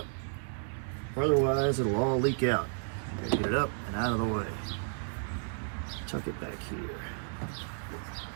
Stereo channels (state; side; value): silent; left; digital silence